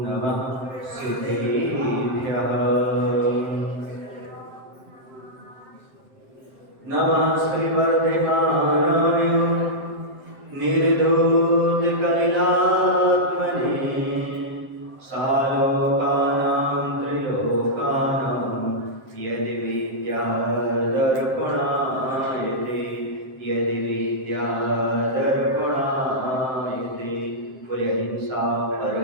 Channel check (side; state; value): left; late; 7.7 ms